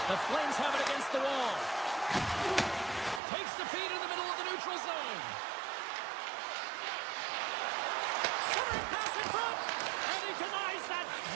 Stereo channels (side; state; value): left; drops out; at 3.2 s